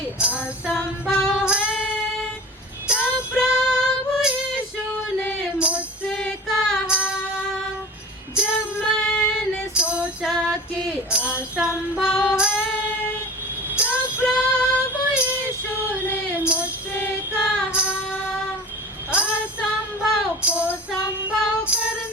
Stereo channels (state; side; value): normal; both; correlation 0.36